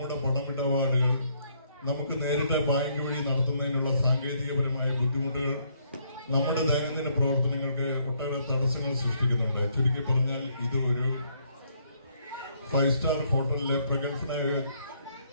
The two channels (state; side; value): inverted; both; correlation -0.70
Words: പണമിടപാടുകൾ നമുക്ക് നേരിട്ട് ബാങ്ക് വഴി നടത്തുന്നതിനുള്ള സാങ്കേതികപരമായ ബുദ്ധിമുട്ടുകൾ നമ്മുടെ ദൈനംദിന പ്രവർത്തനങ്ങൾക്ക് ഒട്ടേറെ തടസ്സങ്ങൾ സൃഷ്ടിക്കുന്നുണ്ട്. ചുരുക്കി പറഞ്ഞാൽ ഇത് ഒരു 5 സ്റ്റാർ ഹോട്ടലിലെ പ്രഗത്ഭനായ